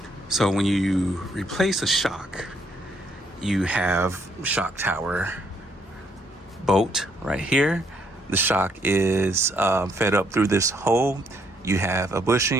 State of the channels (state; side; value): normal; both; correlation 0.71